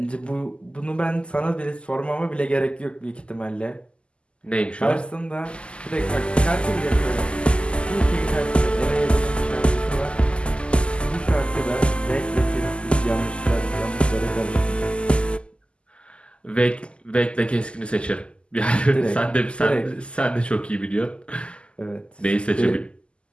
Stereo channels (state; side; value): late; right; 0.052 ms